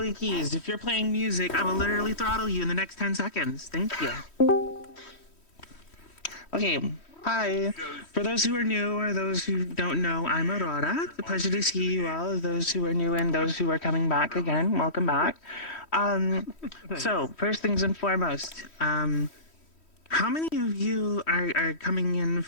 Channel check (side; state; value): right; late; 3.1 ms